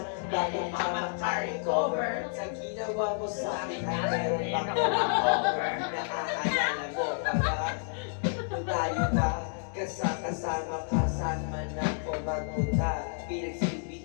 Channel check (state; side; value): silent; right; digital silence